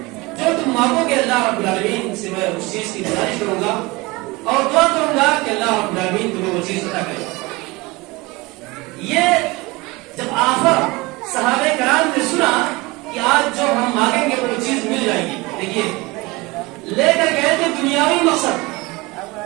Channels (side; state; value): left; quieter; 23.4 dB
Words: جو تم مانگو گے، اللہ رب العالمین سے میں اس چیز کی گزارش کروں گا اور دعا کروں گا کہ اللہ رب العالمین تمہیں وہ چیز عطا کرے۔ یہ جب آخر صحابہ کرام نے سنا کہ آج جو ہم مانگیں گے وہ چیز مل دیکھیے لے کر گئے تھے دنیاوی مقصد.